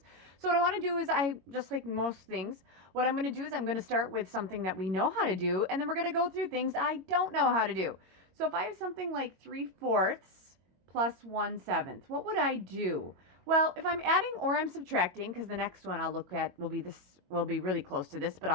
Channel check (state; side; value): late; left; 22 ms